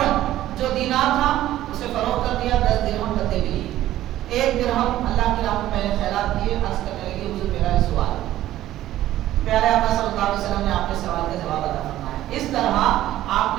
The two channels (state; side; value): quieter; left; 13.9 dB